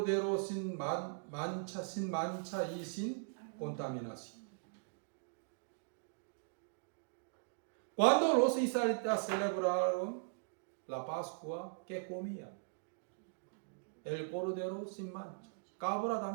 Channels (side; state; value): left; silent; digital silence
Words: sin mancha y sin contaminación. Cuando los israelitas celebraron la Pascua, ¿qué comían? El cordero sin mancha, cabra